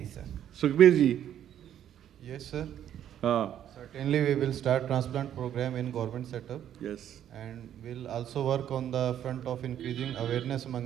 sir. Sukhbir ji. Yes, sir. Certainly, we will start transplant program in government setup. Yes. And we'll also work on the front of increasing awareness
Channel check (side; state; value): left; quieter; 10.5 dB